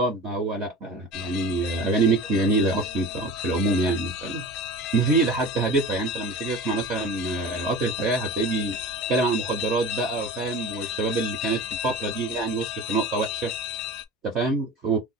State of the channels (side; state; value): both; normal; correlation 0.34